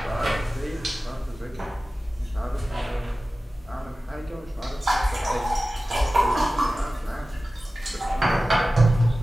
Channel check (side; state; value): both; normal; correlation 0.96